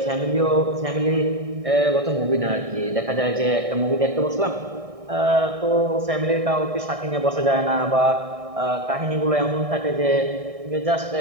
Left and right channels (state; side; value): late; left; 1.6 ms